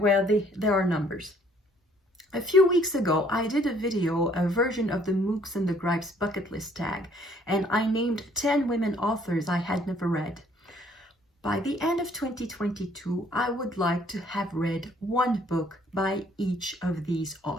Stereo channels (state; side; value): normal; both; correlation 0.62